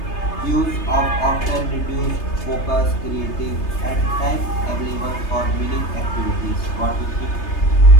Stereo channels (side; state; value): right; late; 3.3 ms